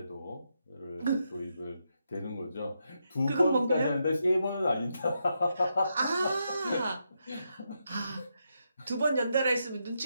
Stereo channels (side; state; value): both; inverted; correlation -0.82